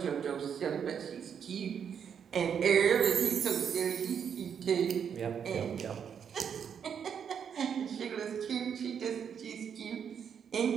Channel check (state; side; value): quieter; left; 7.6 dB